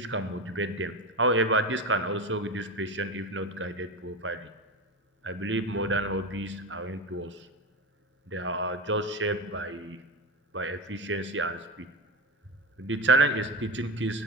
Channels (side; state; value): both; normal; correlation 0.21